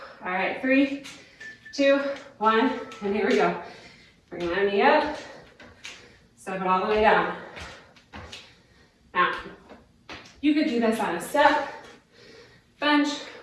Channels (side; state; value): both; identical; correlation 1.00